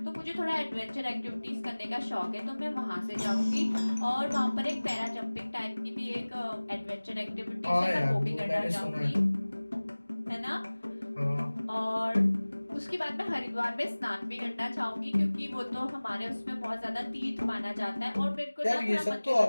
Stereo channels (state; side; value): inverted; both; correlation -1.00